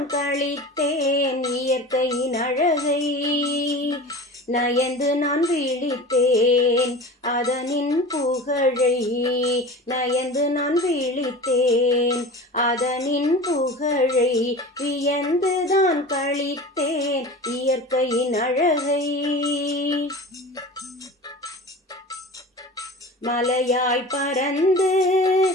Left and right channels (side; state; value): both; normal; correlation 0.35